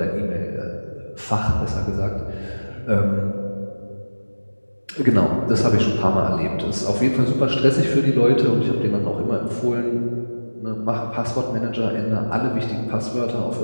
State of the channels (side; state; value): both; inverted; correlation -1.00